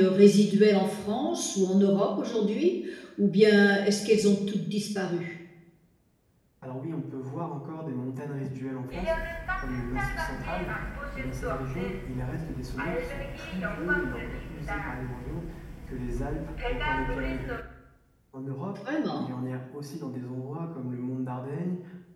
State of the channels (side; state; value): both; identical; correlation 1.00